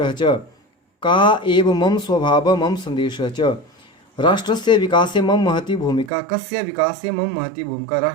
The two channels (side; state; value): left; drops out; at 6.1 s